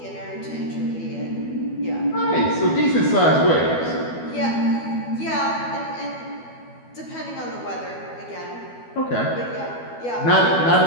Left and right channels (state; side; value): late; right; 12 ms